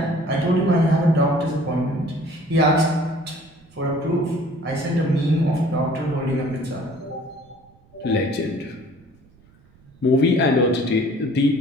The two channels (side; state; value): right; noise; rumble, 29 dB below the sound